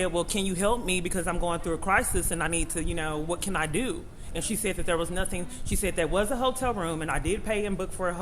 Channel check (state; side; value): identical; both; correlation 1.00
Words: well, can you help me because I'm going through a crisis and I need to, what can I do? And she said that there was nothing. She said there was a hotel room and I did pay and book for a